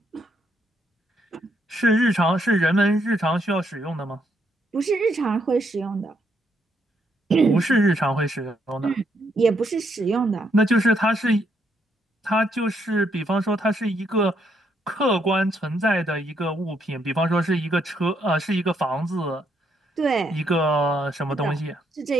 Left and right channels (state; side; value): normal; both; correlation 0.74